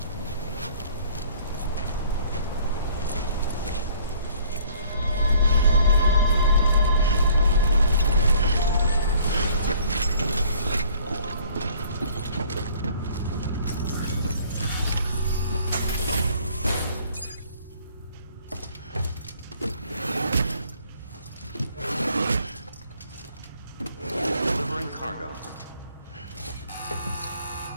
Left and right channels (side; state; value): both; inverted; correlation -0.57